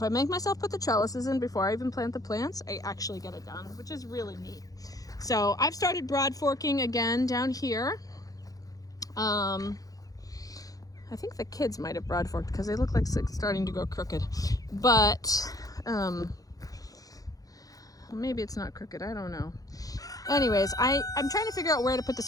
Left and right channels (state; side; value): late; right; 0.17 ms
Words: I make myself put the trellises in before I even plant the plants, I actually get it done, which is really neat. So I've started broad forking again down here. I think the kids might have broad forked because they look like it's starting to go crooked, but maybe it's not crooked, I don't know. Anyways, I'm trying to figure out where to put the